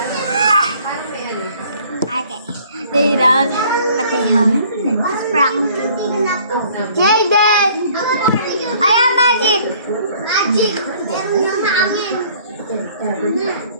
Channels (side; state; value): both; inverted; correlation -0.56